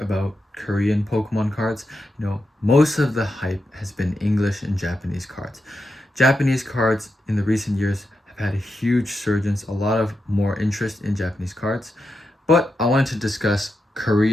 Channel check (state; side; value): normal; both; correlation 0.87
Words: Korean Pokemon cards. Most of the hype has been English and Japanese cards. Japanese cards in the recent years have had a huge surgence, a lot of more interest in Japanese cards, but I wanted to discuss